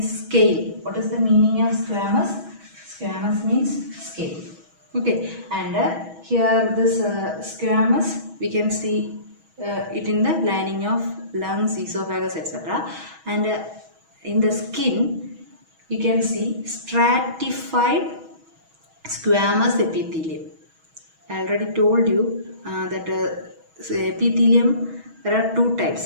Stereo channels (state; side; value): late; left; 6.2 ms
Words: scale. What is the meaning of squamous? Squamous means scale. Okay, and here this squamous, we can see it in the lining of lungs, esophagus, etc. And in the skin you can see stratified squamous epithelium. I already told you that epithelium, there are two